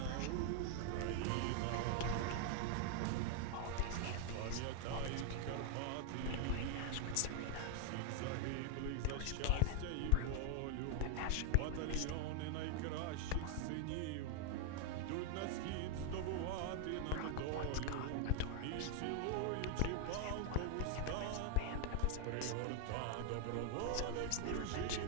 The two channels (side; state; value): both; different; correlation 0.00